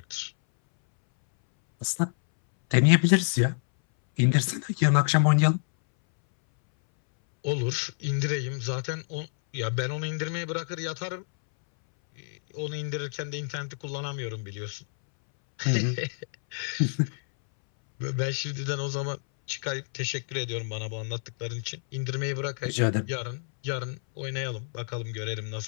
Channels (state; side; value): silent; right; 59 dB below the other